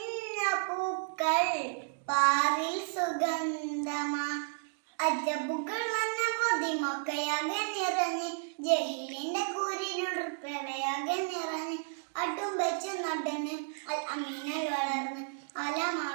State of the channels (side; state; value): left; silent; digital silence